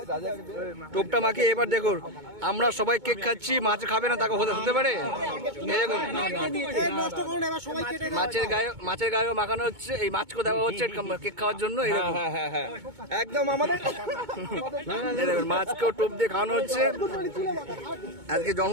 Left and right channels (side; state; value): left; late; 2.2 ms